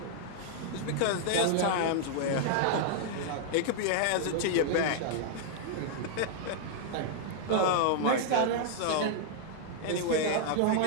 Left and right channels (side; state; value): both; different; correlation -0.01